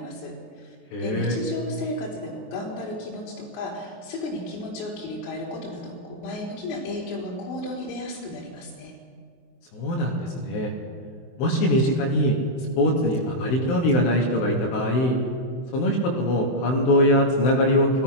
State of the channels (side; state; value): right; late; 23 ms